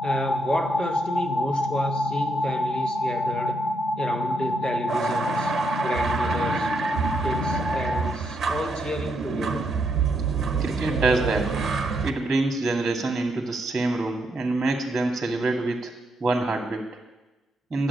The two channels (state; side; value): normal; both; correlation 0.78